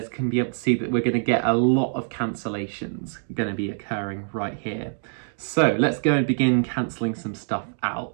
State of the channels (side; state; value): left; silent; digital silence